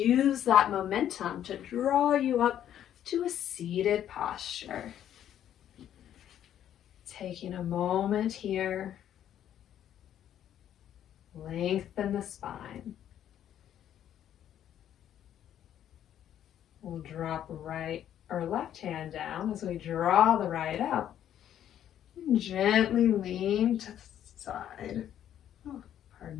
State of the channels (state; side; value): quieter; right; 10.6 dB